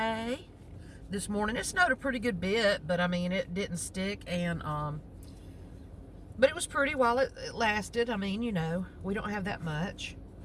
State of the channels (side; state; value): both; identical; correlation 1.00